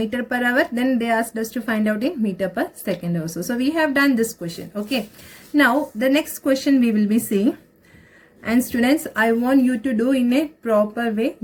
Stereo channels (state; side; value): identical; both; correlation 1.00